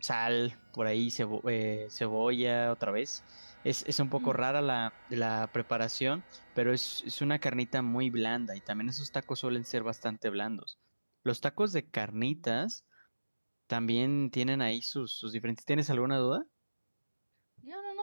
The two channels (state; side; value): inverted; both; correlation -1.00